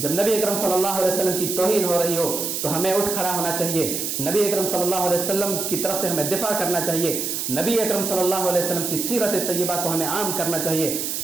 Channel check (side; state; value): right; noise; hiss, 2 dB below the sound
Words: جب نبی اکرم صلی اللہ علیہ وسلم کی توہین ہو رہی ہو تو ہمیں اٹھ کھڑا ہونا چاہیے، نبی اکرم صلی اللہ علیہ وسلم کی طرف سے ہمیں دفاع کرنا چاہیے، نبی اکرم صلی اللہ علیہ وسلم کی سیرت طیبہ کو ہمیں عام کرنا چاہیے،